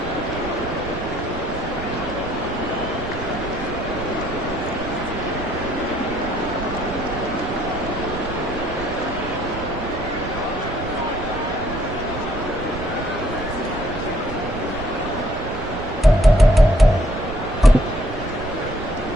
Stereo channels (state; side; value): noise; right; rumble, 10 dB below the sound